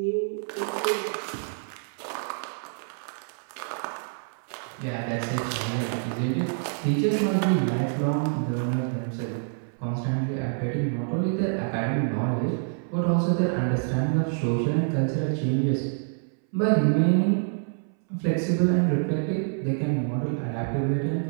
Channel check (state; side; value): silent; left; 59 dB below the other